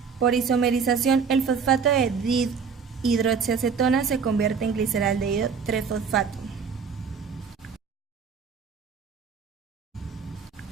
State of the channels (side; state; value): left; quieter; 6.0 dB